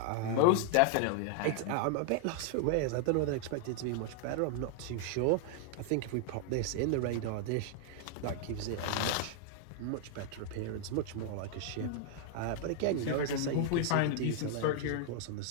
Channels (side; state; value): both; different; correlation 0.00